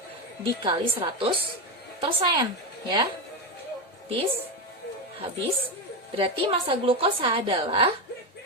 dikali 100% ya. Habis. Berarti massa glukosa adalah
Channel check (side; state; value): both; normal; correlation 0.12